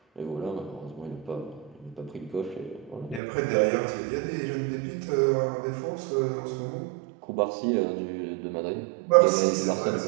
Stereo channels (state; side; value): drops out; left; at 3.2 s